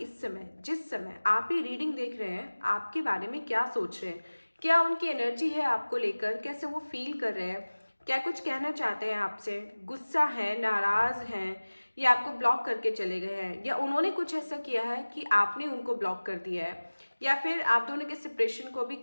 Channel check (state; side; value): inverted; both; correlation -1.00